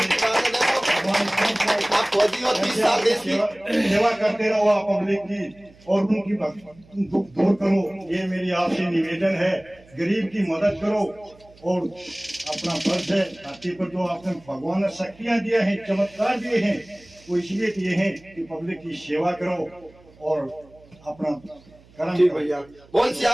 आप फौजी हो, 30 साल देश की सेवा करते रहो आप पब्लिक की, और उनकी दुख दूर करो। ये मेरी आपसे निवेदन है, गरीब की मदद करो। और अपना फर्ज है, धरती पर जो आपने भगवान ने शक्तियां दिया है, चमत्कार दिए हैं, वो इसलिए दिए हैं कि पब्लिक की सेवा करो और अपना कर्म। ठीक भैया, बोल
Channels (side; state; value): right; noise; hum, 26 dB below the sound